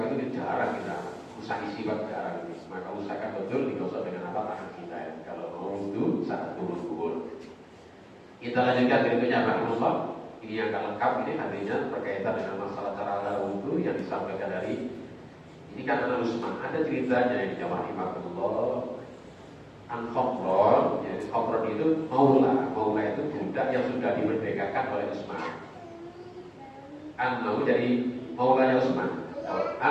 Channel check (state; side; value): identical; both; correlation 1.00